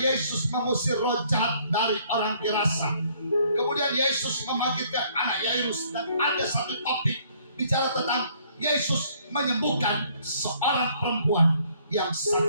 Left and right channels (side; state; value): both; inverted; correlation -0.63